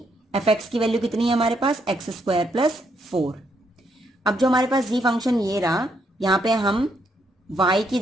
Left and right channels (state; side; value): normal; both; correlation 0.75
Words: एफ एक्स की वैल्यू कितनी है हमारे पास, एक्स स्क्वायर प्लस 4। अब जो हमारे पास जी फंक्शन ये रहा, यहाँ पे हम y की